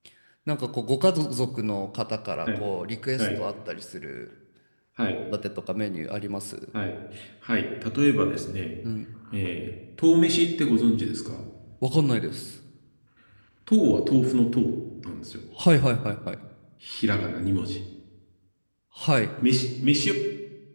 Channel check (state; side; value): inverted; both; correlation -1.00